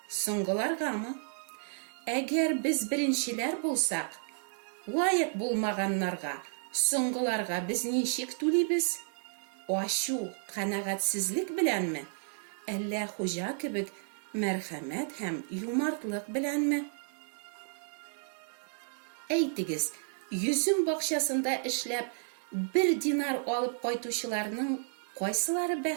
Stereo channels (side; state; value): left; silent; digital silence